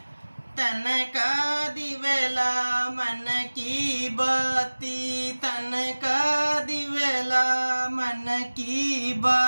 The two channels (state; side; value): inverted; both; correlation -1.00